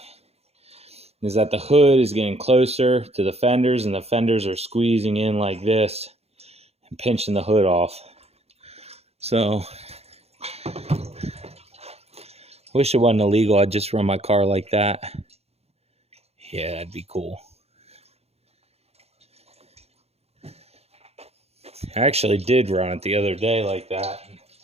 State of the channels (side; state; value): left; late; 0.30 ms